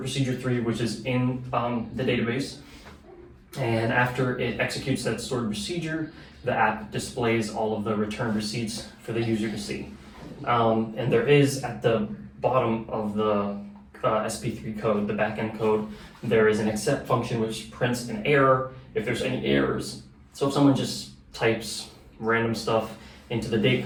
3, which is in the database. And after it executes that stored procedure, the app displays all of the returned receipts for the user to see. And there is at the bottom of the SP3 code, the backend code, there is an accept function which prints an error if there's any errors. So if someone just types random stuff into the date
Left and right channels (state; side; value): identical; both; correlation 1.00